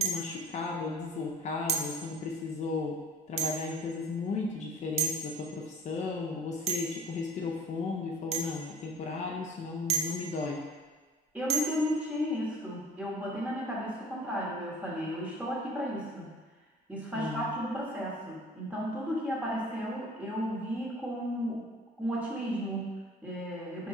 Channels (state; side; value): normal; both; correlation 0.47